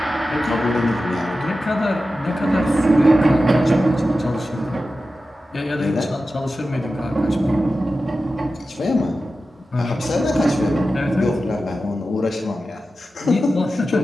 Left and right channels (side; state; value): both; normal; correlation 0.93